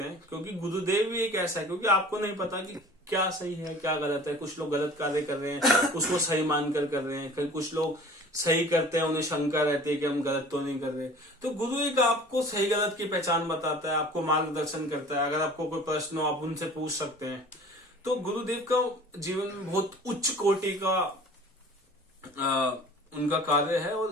हैं, क्योंकि गुरुदेव भी एक ऐसा है, क्योंकि आपको नहीं पता कि क्या सही है क्या गलत है। कुछ लोग गलत कार्य कर रहे हैं, उसको सही मानकर कर रहे हैं, फिर कुछ लोग सही करते हैं, उन्हें शंका रहती है कि हम गलत तो नहीं कर रहे। तो गुरु एक आपको सही गलत की पहचान बताता है, आपको मार्गदर्शन करता है। अगर आपको कोई प्रश्न हो आप उनसे पूछ सकते हैं। तो गुरुदेव का जीवन में बहुत उच्च कोटि का उनका कार्य है,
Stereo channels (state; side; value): normal; both; correlation 0.45